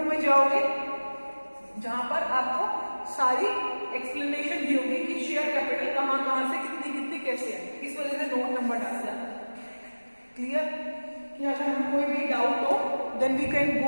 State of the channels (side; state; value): both; inverted; correlation -1.00